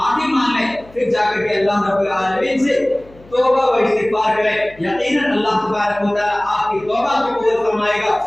مانگیں، پھر جا کر کے اللہ رب العالمین سے توبہ و استغفار کریں۔ یقیناً اللہ تبارک و تعالیٰ آپ کی توبہ کو قبول فرمائے گا،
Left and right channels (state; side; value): noise; left; hum, 25 dB below the sound